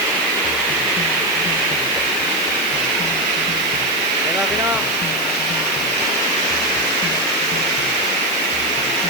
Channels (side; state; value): right; noise; hiss, 11 dB below the sound